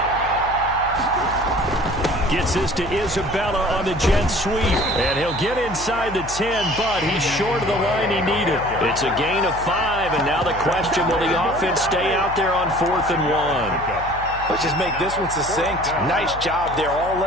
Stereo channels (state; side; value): noise; left; hum, 13 dB below the sound